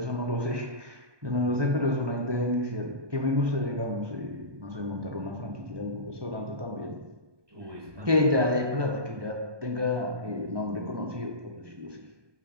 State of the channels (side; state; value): left; late; 1.2 ms